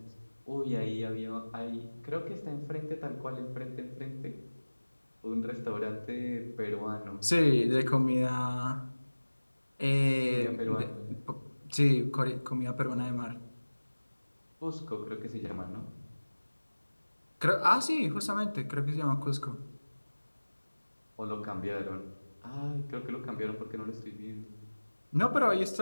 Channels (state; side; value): inverted; both; correlation -1.00